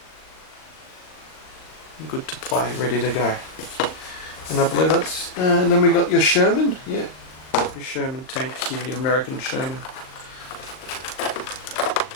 Good to play, ready to go. And I believe that's, and then we got your Sherman, yeah. Your Sherman tank here, your American Sherman.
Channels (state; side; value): late; right; 38 ms